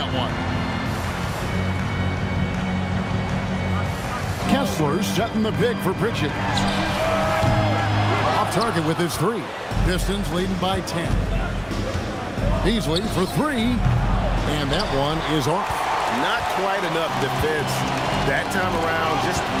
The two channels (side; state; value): both; identical; correlation 1.00